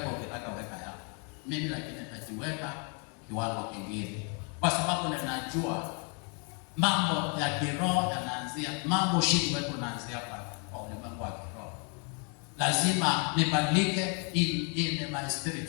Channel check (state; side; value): quieter; right; 37.3 dB